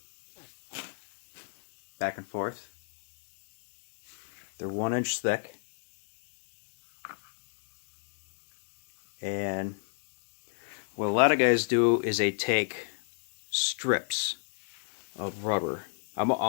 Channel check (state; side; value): silent; right; digital silence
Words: back and forth. They're 1 inch thick, and what a lot of guys do is they take strips of rubber. I'm